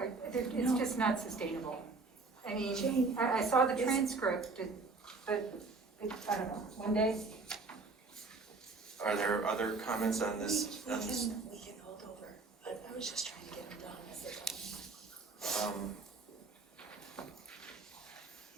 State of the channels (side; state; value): left; quieter; 3.9 dB